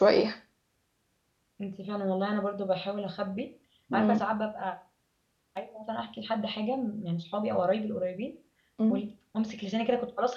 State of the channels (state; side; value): identical; both; correlation 1.00